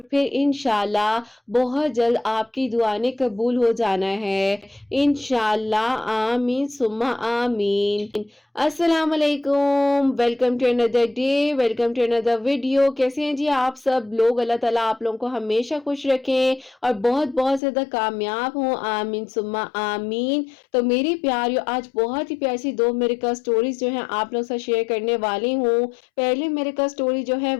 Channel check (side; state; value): right; drops out; at 17.6 s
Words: फिर इंशाअल्लाह बहुत जल्द आपकी दुआ ने कबूल हो जाना है। इंशाअल्लाह आमीन सुम्मा आमीन। अस्सलाम वालेकुम, welcome to another day, welcome to another video. कैसे हैं जी आप सब लोग? अल्लाह ताला आप लोगों को हमेशा खुश रखें और बहुत बहुत ज़्यादा कामयाब हों, आमीन सुम्मा आमीन। तो मेरी प्यारियों, आज बहुत ही प्यारी सी 2 मिरेकल स्टोरीज जो हैं आप लोगों से शेयर करने वाली हूँ। पहली मिरेकल स्टोरी जो है